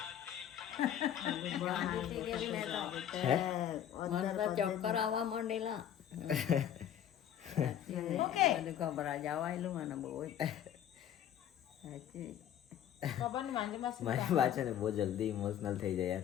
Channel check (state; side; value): quieter; right; 10.2 dB